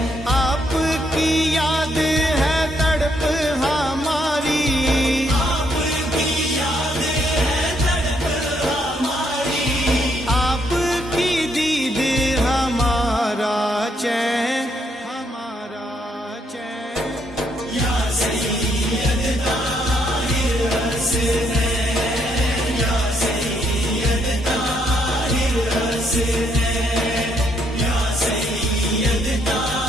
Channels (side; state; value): both; normal; correlation 0.73